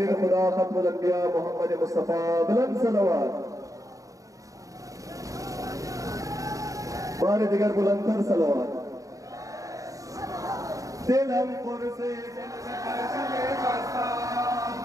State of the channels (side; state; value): left; late; 0.16 ms